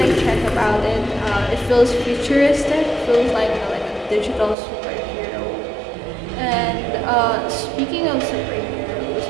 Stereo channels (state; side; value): drops out; left; at 4.5 s